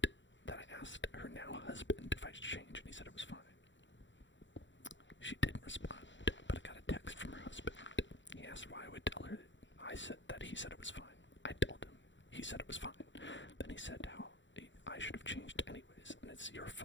that I asked her now husband if I should change, and he said it was fine. She didn't respond, but I got a text from her husband. He asked why I would tell her. I said that he said it was fine. I told him. He said it was fine. Then he said how I should have changed anyways, and it's your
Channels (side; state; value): right; late; 0.54 ms